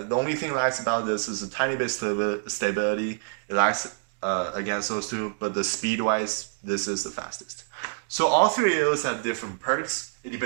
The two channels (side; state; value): left; silent; digital silence